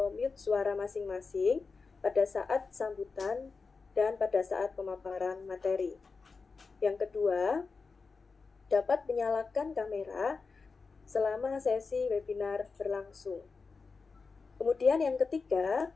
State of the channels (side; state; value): right; quieter; 4.5 dB